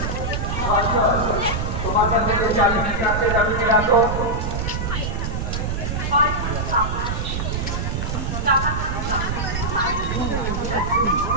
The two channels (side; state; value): right; noise; rumble, 2 dB below the sound